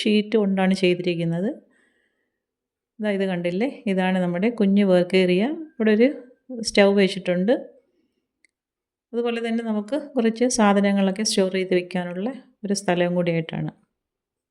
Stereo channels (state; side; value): identical; both; correlation 1.00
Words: ഷീറ്റ് കൊണ്ടാണ് ചെയ്തിരിക്കുന്നത്. ഇത് കണ്ടില്ലേ, ഇതാണ് നമ്മുടെ കുഞ്ഞു വർക്ക് ഏരിയ. ഇവിടെ ഒരു സ്റ്റൗ വെച്ചിട്ടുണ്ട്. അതുപോലെ തന്നെ നമുക്ക് കുറച്ച് സാധനങ്ങളൊക്കെ സ്റ്റോർ ചെയ്ത് വെക്കാനുള്ള ഒരു സ്ഥലവും കൂടിയായിട്ടാണ്.